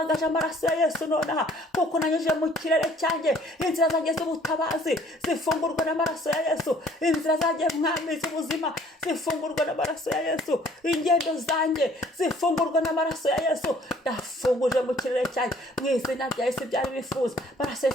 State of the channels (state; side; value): normal; both; correlation 0.57